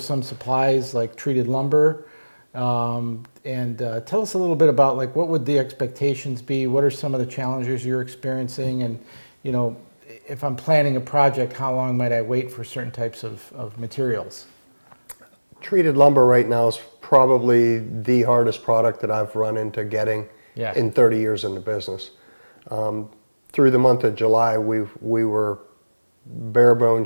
some supplies like treated lumber. And tell us a little bit about, like, what would the expectations be? What are some of the challenges you're experiencing? And if I'm planning a project, how long might I wait for certain types of materials? Treated lumber right now is probably the hardest product that I've run into getting in 30 years in the business. Through the month of July, we were bare bone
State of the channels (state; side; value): inverted; both; correlation -1.00